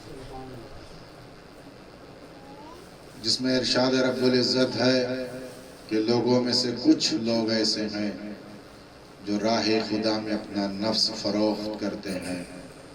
جس میں ارشاد رب العزت ہے کہ لوگوں میں سے کچھ لوگ ایسے ہیں جو راہ خدا میں اپنا نفس فروخت کرتے ہیں.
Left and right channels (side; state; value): both; identical; correlation 1.00